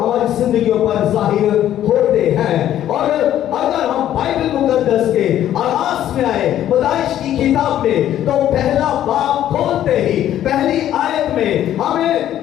زندگیوں پر ظاہر ہوتے ہیں۔ اور اگر ہم بائبل مقدس کے آغاز میں آئے پیدائش کی کتاب میں، تو پہلا باب کھولتے ہی پہلی آیت میں ہمیں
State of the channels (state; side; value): quieter; right; 11.7 dB